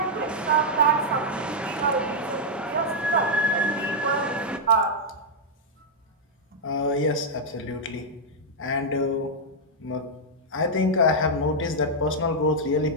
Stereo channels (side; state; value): both; normal; correlation -0.04